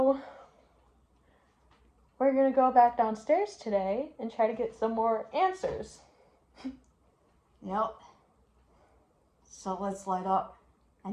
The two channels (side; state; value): both; identical; correlation 1.00